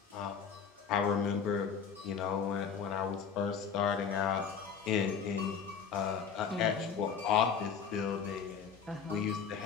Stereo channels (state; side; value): quieter; right; 6.7 dB